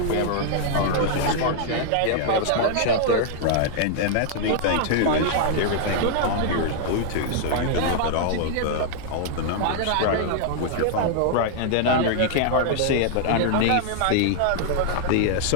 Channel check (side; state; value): both; different; correlation -0.01